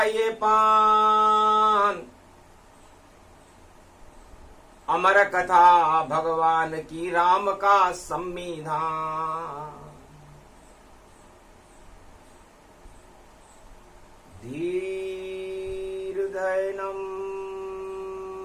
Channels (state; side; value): identical; both; correlation 1.00